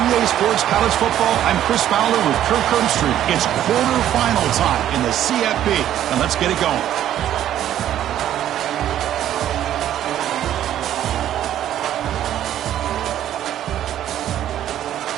EA Sports College Football, I'm Chris Fowler with Kirk Herbstreit. It's quarterfinal time in the CFP, and let's get it going.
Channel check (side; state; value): left; quieter; 11.5 dB